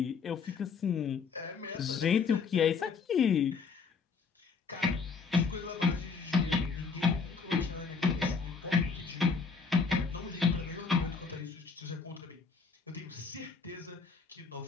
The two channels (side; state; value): right; quieter; 5.1 dB